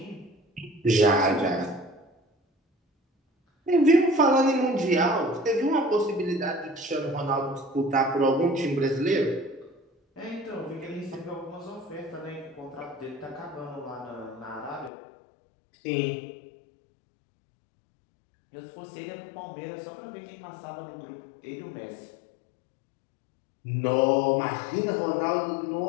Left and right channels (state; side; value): drops out; right; at 14.9 s